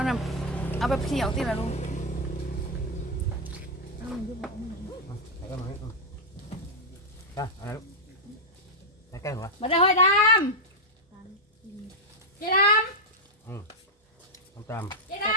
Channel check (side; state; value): both; normal; correlation -0.01